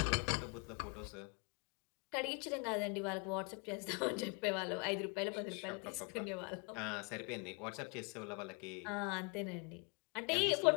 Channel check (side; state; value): right; quieter; 33.3 dB